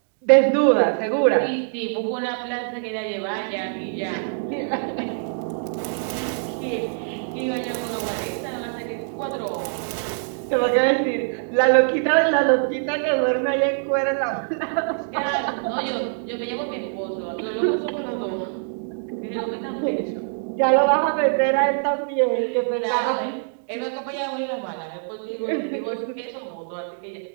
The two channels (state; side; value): silent; left; digital silence